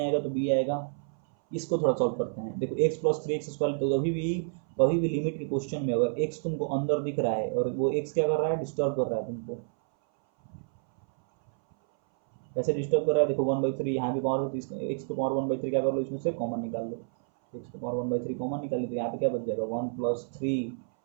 तो b आएगा। इसको थोड़ा सॉल्व करते हैं। देखो x+3x², तो कभी भी लिमिट के क्वेश्चन में अगर x तुमको अंदर दिख रहा है और वो x क्या कर रहा है, डिस्टर्ब कर रहा है तुमको। कैसे डिस्टर्ब कर रहा है, देखो 1/3 यहाँ भी पावर है, तो इसका एक्स के पावर 1/3 क्या कर लो, इसमें से कॉमन निकाल लो। एक्स के पावर 1/3 कॉमन निकाल लो, तो यहाँ पे क्या बच जाएगा 1+3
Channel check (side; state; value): left; silent; 58 dB below the other